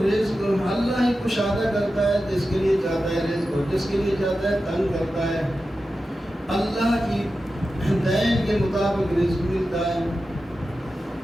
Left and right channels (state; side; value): normal; both; correlation 0.92